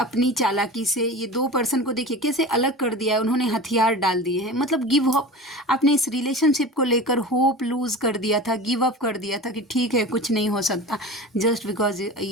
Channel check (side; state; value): both; normal; correlation 0.33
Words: चालाकी से ये 2 पर्सन को देखिए कैसे अलग कर दिया है, उन्होंने हथियार डाल दिए हैं, मतलब गिव अप। आपने इस रिलेशनशिप को लेकर होप लूज कर दिया था, गिव अप कर दिया था कि ठीक है कुछ नहीं हो सकता, जस्ट बिकॉज